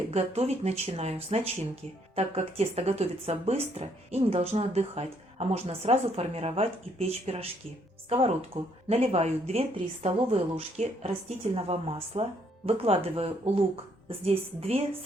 готовить начинаю с начинки, так как тесто готовится быстро и не должно отдыхать, а можно сразу формировать и печь пирожки. В сковородку наливаю 2-3 столовые ложки растительного масла, выкладываю лук, здесь 2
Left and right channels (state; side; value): normal; both; correlation 0.69